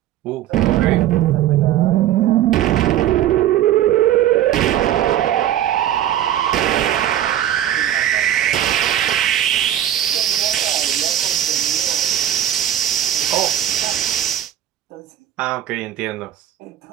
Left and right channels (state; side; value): quieter; left; 11.8 dB